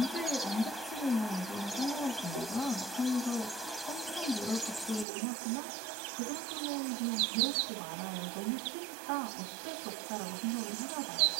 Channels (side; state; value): left; drops out; at 5.1 s